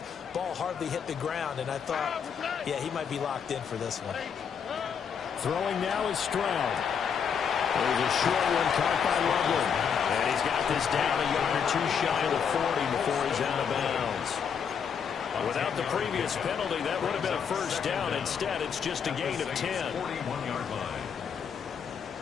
Ball hardly hit the ground, and I thought, yeah, he might be locked in for this one. Throwing now is Stroud. There's a short one caught by Loveland. And he's got this down a yard or two shy of the 40 before he's out of bounds. Without the previous penalty, that would have been a first down. Instead, it's just a gain of 10. 41-yard line.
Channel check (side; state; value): right; quieter; 7.1 dB